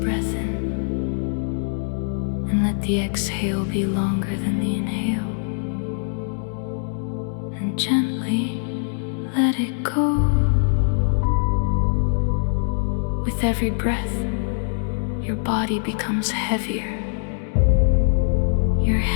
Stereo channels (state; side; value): silent; right; digital silence